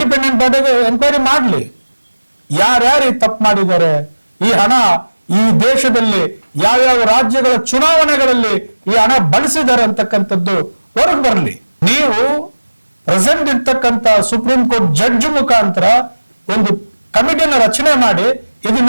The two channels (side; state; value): both; inverted; correlation -1.00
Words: ಬಾಡಿಗೆ ಎನ್ಕ್ವೈರಿ ಮಾಡಲಿ. ಯಾರ್ಯಾರು ತಪ್ಪು ಮಾಡಿದ್ದಾರೆ, ಈ ಹಣ ಈ ದೇಶದಲ್ಲಿ ಯಾವ್ಯಾವ ರಾಜ್ಯಗಳ ಚುನಾವಣೆಗಳಲ್ಲಿ ಈ ಹಣ ಬಳಸಿದ್ದಾರೆ ಅಂತಕ್ಕಂಥದ್ದು ಹೊರಗೆ ಬರಲಿ. ನೀವು ಪ್ರೆಸೆಂಟ್ ಇರ್ತಕ್ಕಂಥ ಸುಪ್ರೀಂ ಕೋರ್ಟ್ ಜಡ್ಜ್ ಮುಖಾಂತರ ಒಂದು ಕಮಿಟಿಯನ್ನು ರಚನೆ ಮಾಡಿ